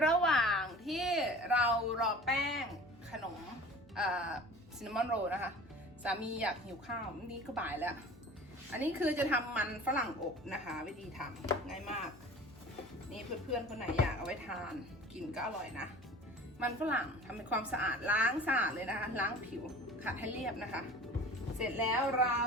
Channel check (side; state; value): both; normal; correlation 0.42